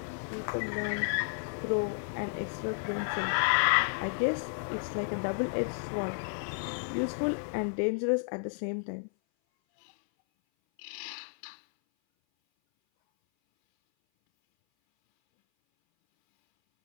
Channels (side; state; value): right; silent; 56 dB below the other